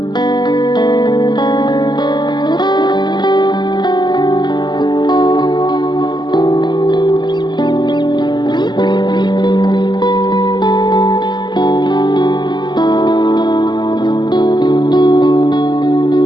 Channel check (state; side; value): late; right; 0.21 ms